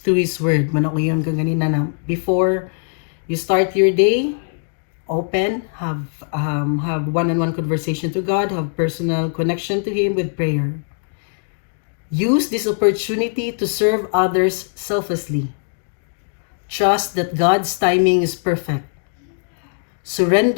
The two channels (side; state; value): right; silent; digital silence